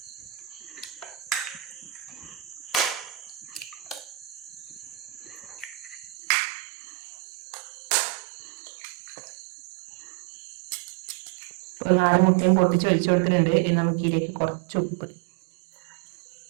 ഇപ്പൊ 4 മുട്ടയും പൊട്ടിച്ച് ഒഴിച്ചു കൊടുത്തിട്ടുണ്ട്. ഇനി നമുക്ക് ഇതിലേക്ക് കുറച്ച് ഉപ്പ്,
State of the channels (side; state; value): left; drops out; at 6.2 s